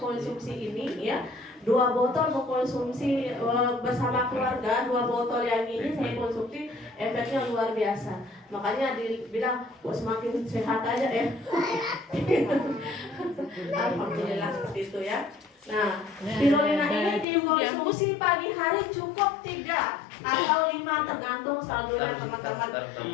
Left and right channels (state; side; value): drops out; right; at 17.2 s